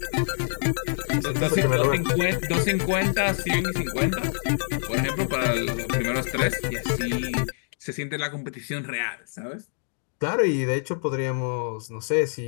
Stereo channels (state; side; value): silent; right; digital silence